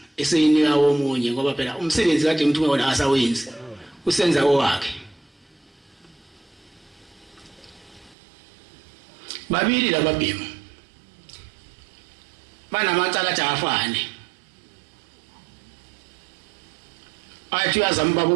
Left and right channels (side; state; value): left; drops out; at 8.2 s